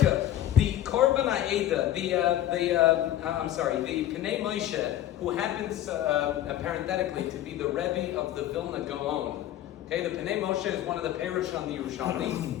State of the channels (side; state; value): right; quieter; 12.5 dB